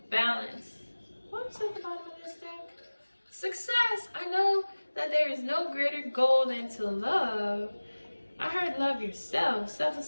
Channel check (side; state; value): both; inverted; correlation -1.00